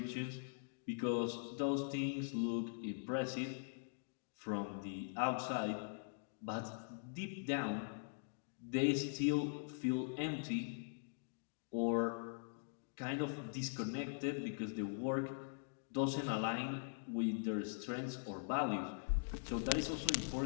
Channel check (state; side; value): silent; right; digital silence